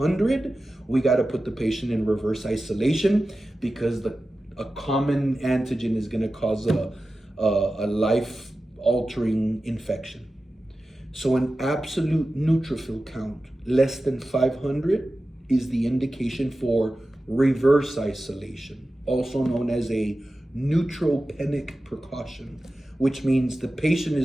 we got to put the patient in reverse isolation, because a common antigen is going to cause a life-altering infection. So an absolute neutrophil count less than 500 is the indication for reverse isolation, also known as a neutropenic precaution, which means the patient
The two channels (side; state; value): both; normal; correlation 0.94